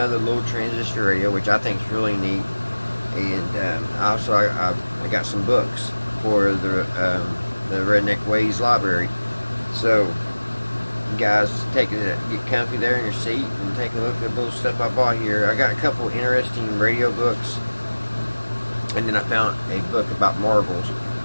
little transistor radio, which I think is really neat. And also I got some books for the Redneck Ways library. So guys, get comfy there in your seat and take a look at the little stuff I bought here. I got a couple interesting radio books, and then I found a book about marbles,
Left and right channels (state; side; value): inverted; both; correlation -1.00